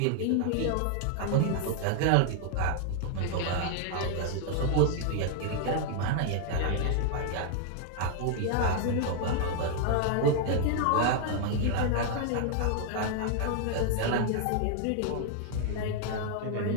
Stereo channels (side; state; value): both; different; correlation 0.00